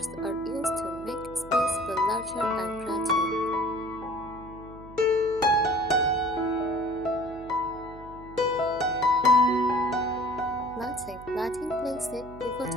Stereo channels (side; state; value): right; noise; hum, 17 dB below the sound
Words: are used to make space feel larger and brighter. Lighting plays a